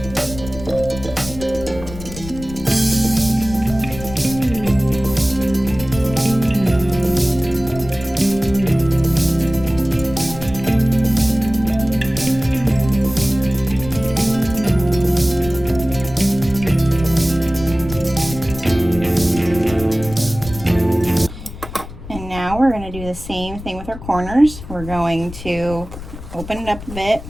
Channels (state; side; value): noise; left; rumble, 12 dB below the sound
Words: We're going to do the same thing with our corners. We're going to open it up a bit.